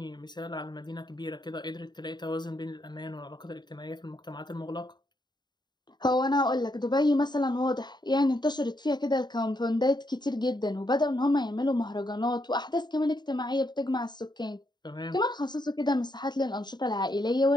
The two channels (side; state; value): right; late; 0.21 ms